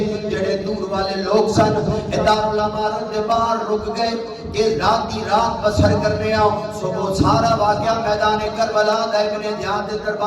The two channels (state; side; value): identical; both; correlation 1.00